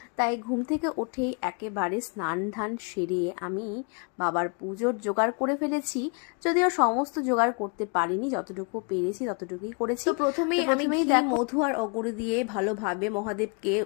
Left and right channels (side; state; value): right; quieter; 35.7 dB